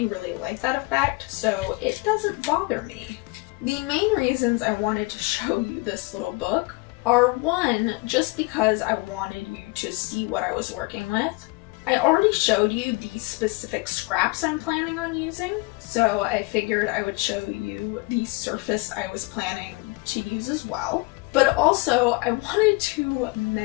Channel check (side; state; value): right; quieter; 25.8 dB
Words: really like that effect, so it doesn't bother me. The main reasons I wanted to show you this little book are, one, just because I wanted you to see what I was working with. I already showed you the specific scraps I'm planning on using, so I figured I would show you the surface I was planning to use as well. But also, I wanted to